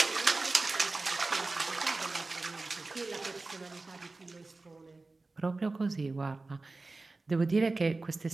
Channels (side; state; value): left; quieter; 3.4 dB